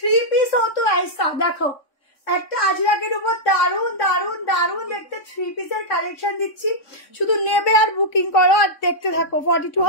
পিস हो तो ऐसा দেখো, একটা আজরাকের উপর দারুন দারুন দারুন দেখতে 3 পিসের কালেকশন দিচ্ছি, শুধু নেবে আর বুকিং করো আর দেখতে থাকো। 42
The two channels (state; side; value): late; right; 3.6 ms